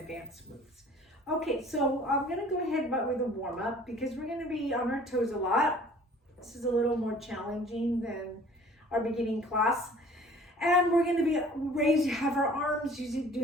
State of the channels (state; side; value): normal; both; correlation 0.51